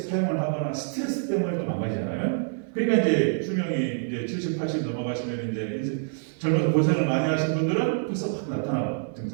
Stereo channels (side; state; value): left; silent; 61 dB below the other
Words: 하거나 스트레스 때문에 또 망가지잖아요. 그러니까 이제 수명이 이제 70, 80 넘어가시면 이제 젊어서 고생을 많이 하신 분들은 벌써 확 나타나고